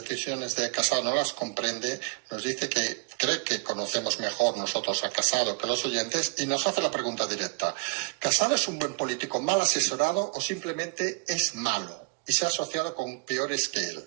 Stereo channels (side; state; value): left; quieter; 30.2 dB